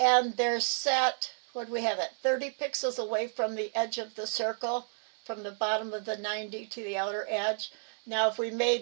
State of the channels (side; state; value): left; silent; digital silence